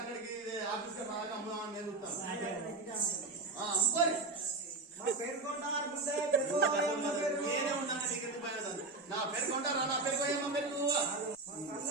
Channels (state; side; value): quieter; left; 3.4 dB